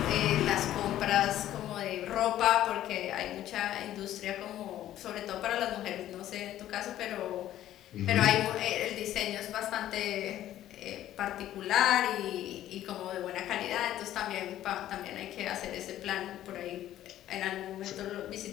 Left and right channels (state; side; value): quieter; right; 12.8 dB